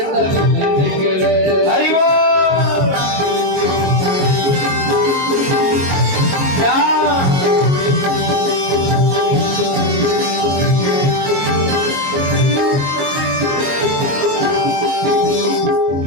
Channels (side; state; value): left; late; 22 ms